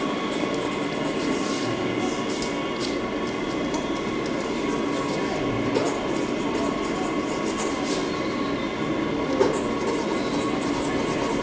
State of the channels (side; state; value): both; identical; correlation 1.00